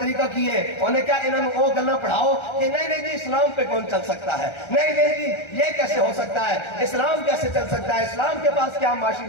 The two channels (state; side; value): late; right; 1.3 ms